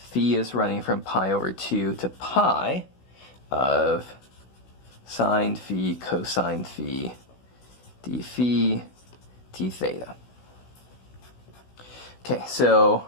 is running from pi over 2 to pi of sine phi cosine phi d phi d theta. Okay, so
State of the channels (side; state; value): right; late; 16 ms